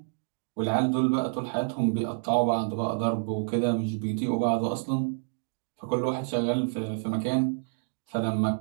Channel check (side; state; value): left; silent; digital silence